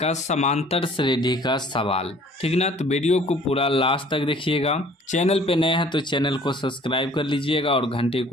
का समांतर श्रेणी का सवाल। ठीक ना, तो वीडियो को पूरा लास्ट तक देखिएगा। चैनल पे नए हैं तो चैनल को सब्सक्राइब कर लीजिएगा और घंटे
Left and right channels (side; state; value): both; normal; correlation 0.54